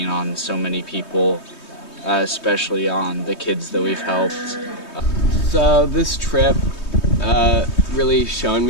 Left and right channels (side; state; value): right; late; 3.2 ms